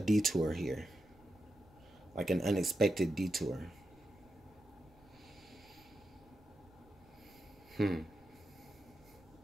here, like an unexpected detour.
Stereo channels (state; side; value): noise; right; rumble, 27 dB below the sound